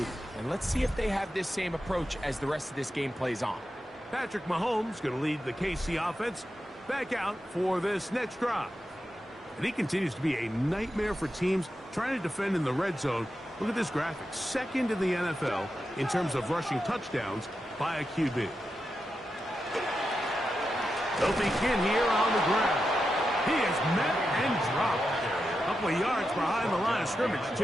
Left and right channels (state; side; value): normal; both; correlation 0.88